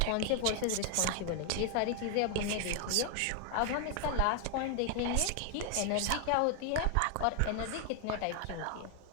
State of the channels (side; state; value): both; different; correlation 0.00